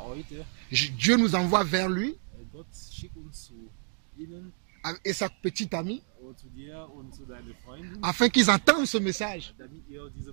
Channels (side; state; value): left; silent; digital silence